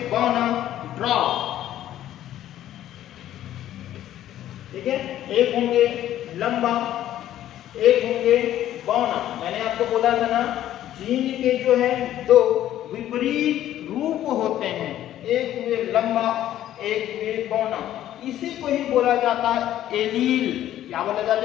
बौना ड्रॉप। ठीक है, एक होंगे लंबा, एक होंगे बौना। मैंने आपको बोला था ना, जीन के जो है दो विपरीत रूप होते हैं, एक हुए लंबा, एक हुए बौना। इसी को ही बोला जाता है एलील। क्या बोला जाता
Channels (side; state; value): right; quieter; 12.4 dB